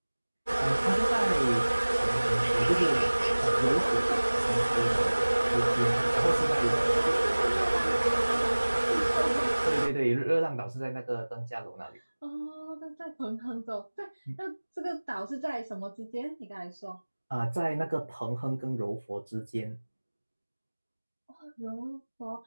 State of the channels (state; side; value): inverted; both; correlation -1.00